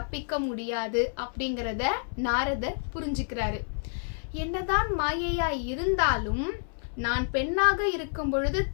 முடியாது அப்படிங்கிறத நாரதர் புரிஞ்சுக்கிறாரு. என்னதான் மாயையா இருந்தாலும் நான் பெண்ணாக இருக்கும் பொழுது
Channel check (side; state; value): right; silent; 59 dB below the other